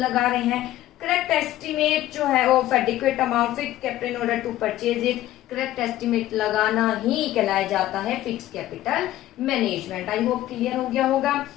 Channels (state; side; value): quieter; right; 14.4 dB